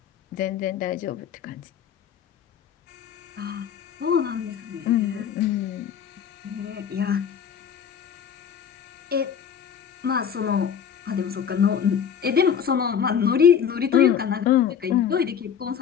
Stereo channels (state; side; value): quieter; right; 8.0 dB